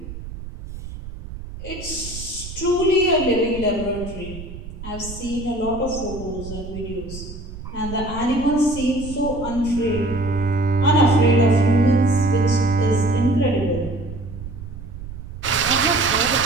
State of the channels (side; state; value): right; noise; rumble, 11 dB below the sound